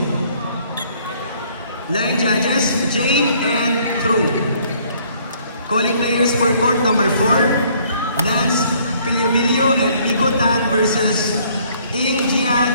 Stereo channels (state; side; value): inverted; both; correlation -0.62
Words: Line judges, Jane and True. Calling players for court number 4, Lance Piliobilio and Nico Tan versus Ing Jia